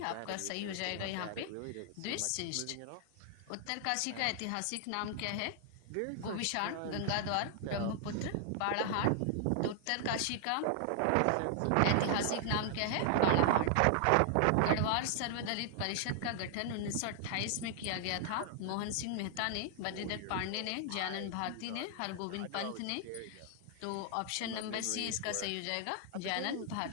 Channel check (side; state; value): both; different; correlation 0.00